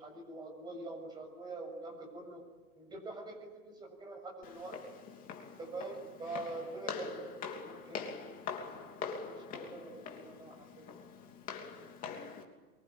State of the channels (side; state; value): both; normal; correlation 0.32